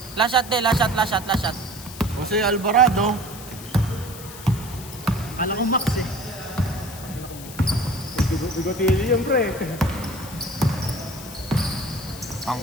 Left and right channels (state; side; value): noise; left; hiss, 14 dB below the sound